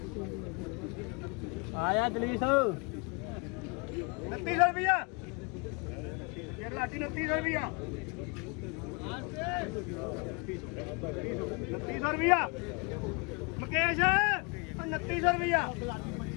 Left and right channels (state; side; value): quieter; right; 32.0 dB